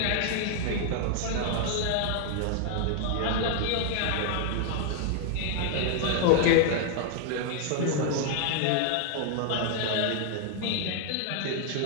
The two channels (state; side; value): different; both; correlation 0.00